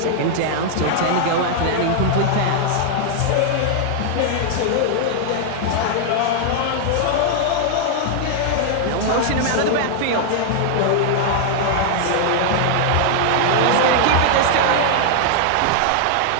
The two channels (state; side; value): different; both; correlation 0.00